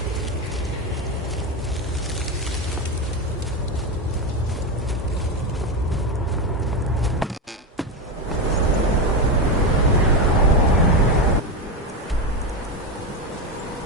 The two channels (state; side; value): normal; both; correlation 0.13